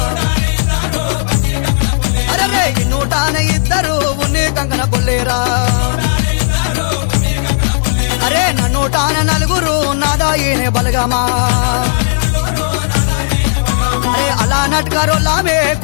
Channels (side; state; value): right; silent; digital silence